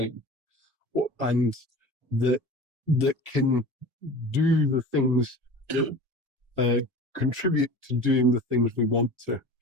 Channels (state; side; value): late; left; 1.1 ms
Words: and that can do the things that contribute to doing the things we want to.